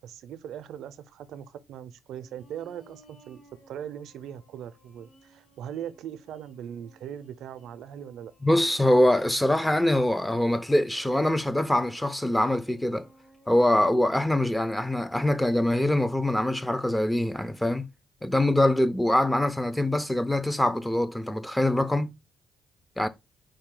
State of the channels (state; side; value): normal; both; correlation 0.96